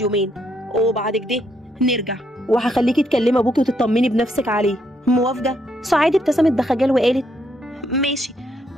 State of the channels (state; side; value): normal; both; correlation 0.75